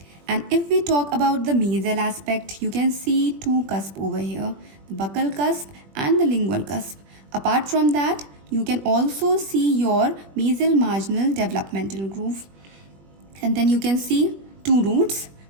And if we talk about the mesial aspect, you can see two cusps over here, the buccal cusp and the lingual cusp. Apart from that, you can also see your mesial marginal developmental groove. And then you can see two roots,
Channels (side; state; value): left; late; 21 ms